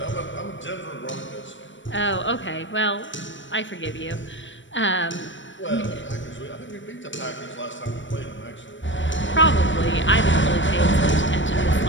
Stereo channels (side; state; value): right; late; 0.55 ms